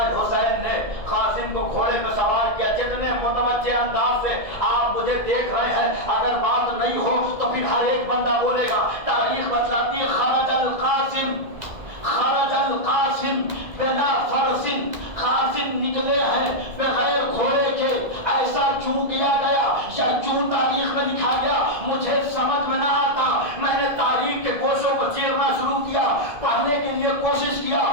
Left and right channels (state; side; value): late; left; 2.0 ms